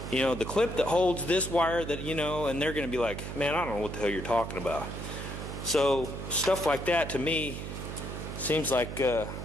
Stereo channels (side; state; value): right; noise; hum, 7 dB below the sound